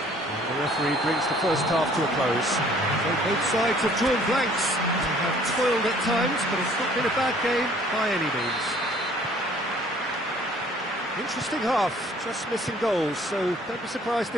And the referee brings the first half to a close. So both sides have drawn blanks. They have toiled at times, but it's not been a bad game by any means. Interesting half, just missing goals, so don't be surprised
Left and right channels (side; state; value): both; normal; correlation 0.56